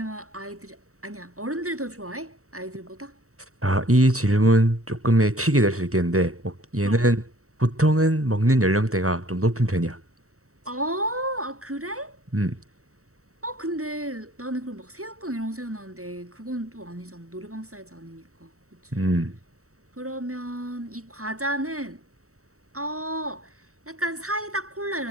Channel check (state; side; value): late; left; 0.64 ms